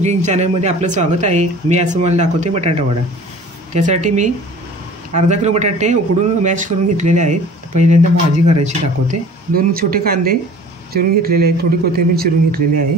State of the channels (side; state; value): both; normal; correlation 0.45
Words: चॅनलमध्ये आपलं स्वागत आहे। मी आज तुम्हाला दाखवते बटाटा वडा। त्यासाठी मी अर्धा किलो बटाटे उकडून मॅश करून घेतलेले आहेत। पहिल्यांदा भाजी करायची दाखवते। 2 छोटे कांदे चिरून घेतलेले आहेत, थोडी कोथिंबीर चिरून घेतलेली